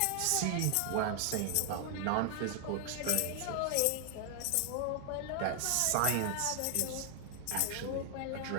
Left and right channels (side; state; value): both; different; correlation 0.00